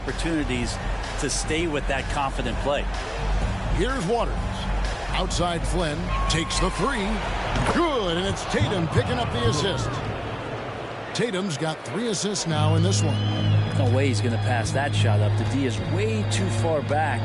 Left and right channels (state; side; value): identical; both; correlation 1.00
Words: to stay with that confident play. Here's Waters. Outside Flynn takes the 3. Good, and it's Tatum picking up the assist. Tatum's got 3 assists now in this one. No way he's going to pass that shot up. The D is way too far back